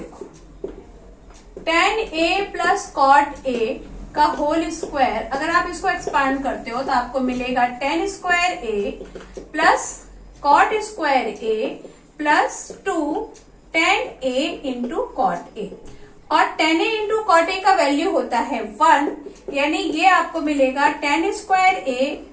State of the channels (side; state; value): both; identical; correlation 1.00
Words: 10a प्लस कॉट ए का होल स्क्वायर। अगर आप इसको एक्सपांड करते हो तो आपको मिलेगा 10 square A plus cot square A plus 2 10a into cot A. और 10a इंटू कॉट ए का वैल्यू होता है 1, यानी ये आपको मिलेगा 10 स्क्वायर ए